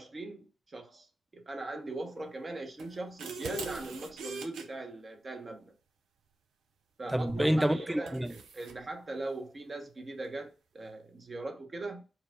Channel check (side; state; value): both; normal; correlation 0.95